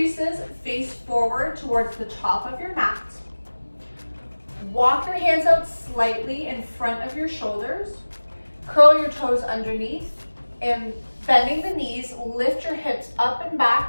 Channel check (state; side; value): inverted; both; correlation -1.00